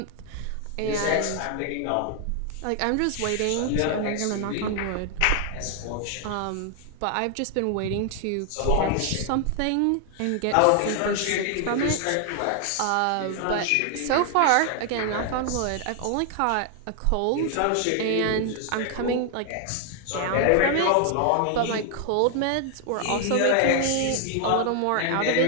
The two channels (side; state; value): both; different; correlation 0.00